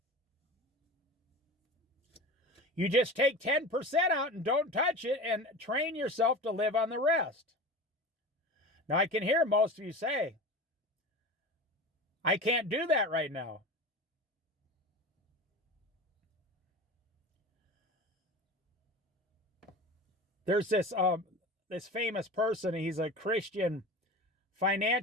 You just take 10% out and don't touch it and train yourself to live on the rest. Now, I can hear most of you say, "I can't do that right now." There's this famous person. He's a Christian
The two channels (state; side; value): normal; both; correlation 0.32